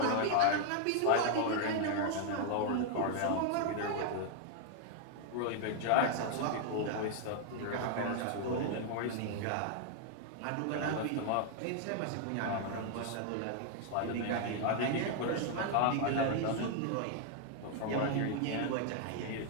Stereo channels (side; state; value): both; different; correlation 0.00